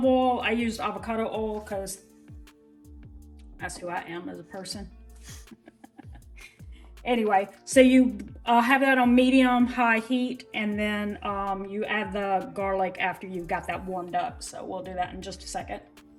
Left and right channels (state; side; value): identical; both; correlation 1.00